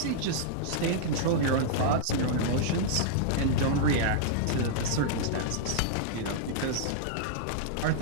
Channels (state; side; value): different; both; correlation -0.02